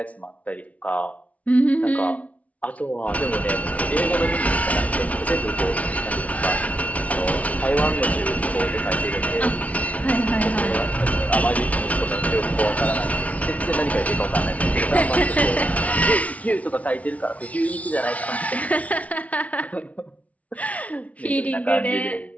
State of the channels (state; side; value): late; right; 0.067 ms